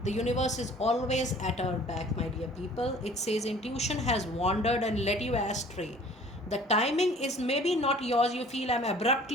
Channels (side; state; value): both; normal; correlation 0.50